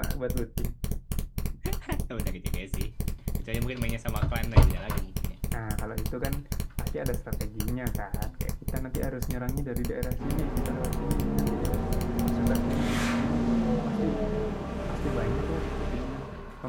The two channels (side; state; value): both; identical; correlation 1.00